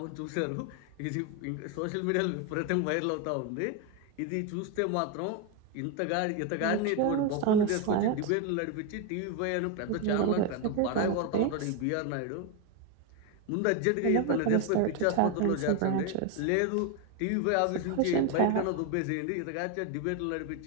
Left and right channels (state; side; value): different; both; correlation 0.02